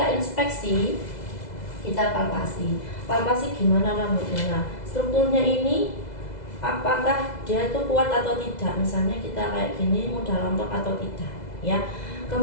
inspeksi, kita palpasi gimana rambutnya. Nah, strukturnya ini apakah dia itu kuat atau tidak, misalnya kita kayak gini mudah rontok atau tidak ya.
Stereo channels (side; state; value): right; late; 2.0 ms